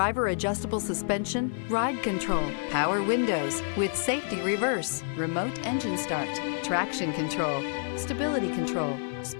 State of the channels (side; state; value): right; silent; 59 dB below the other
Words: adjustable suspension, ride control, power windows with safety reverse, remote engine start, traction control, stability control,